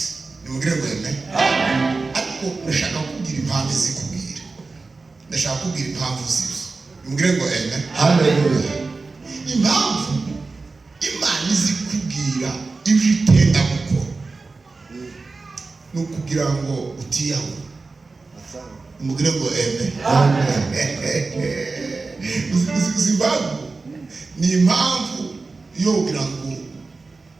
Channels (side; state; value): left; quieter; 3.9 dB